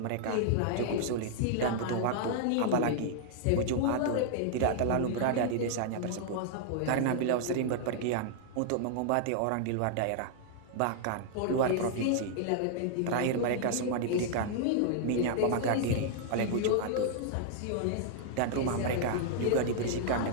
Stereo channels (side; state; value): both; different; correlation -0.01